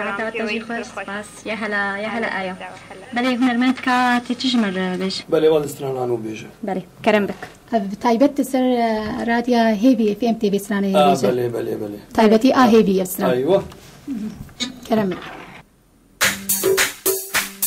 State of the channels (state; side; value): identical; both; correlation 1.00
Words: و تجی خوش سپاس يا هلا آیا بله هنرمند که تجمر بيش بله والد استرانانو بيجه بله كرم بك تايبت سر راديا هيفي في ام تي في سرانا هيفي بله تايبتي هيفي سرانا ايوه كرم